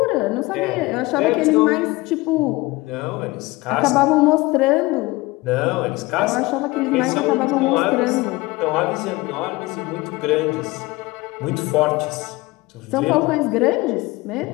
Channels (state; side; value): quieter; right; 21.7 dB